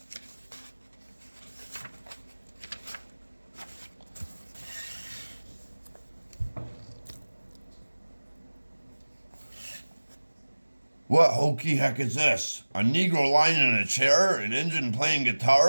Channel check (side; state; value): both; inverted; correlation -1.00